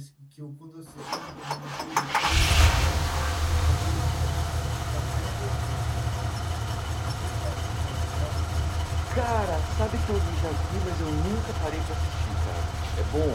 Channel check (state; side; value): identical; both; correlation 1.00